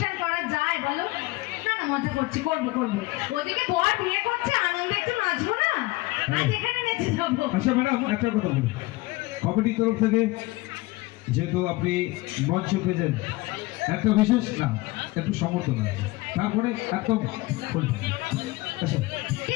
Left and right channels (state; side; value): quieter; right; 20.9 dB